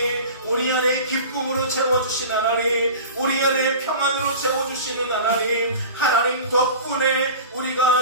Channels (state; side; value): inverted; both; correlation -0.36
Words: 우리 안에 기쁨으로 채워주신 하나님, 우리 안에 평안으로 채워주시는 하나님, 하나님 덕분에